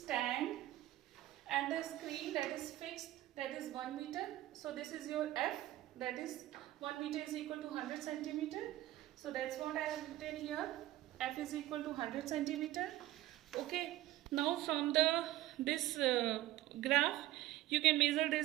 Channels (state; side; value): quieter; left; 15.3 dB